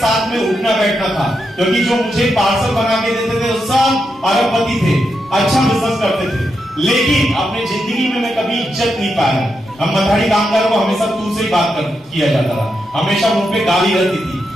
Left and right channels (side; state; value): both; normal; correlation 0.84